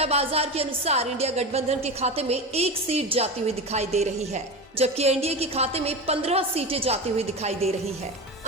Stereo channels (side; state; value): both; normal; correlation 0.23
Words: बाजार के अनुसार इंडिया गठबंधन के खाते में 1 सीट जाती हुई दिखाई दे रही है, जबकि एनडीए के खाते में 15 सीटें जाती हुई दिखाई दे रही है।